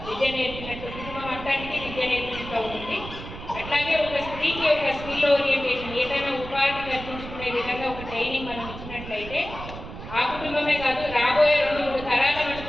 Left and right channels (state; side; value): noise; right; rumble, 11 dB below the sound